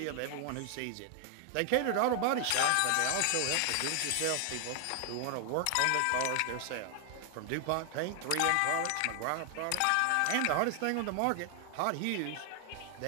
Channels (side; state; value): both; different; correlation 0.00